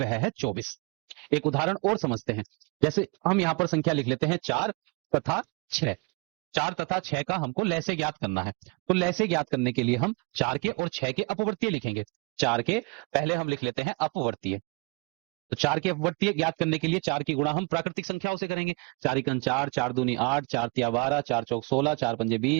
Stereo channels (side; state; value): left; quieter; 30.5 dB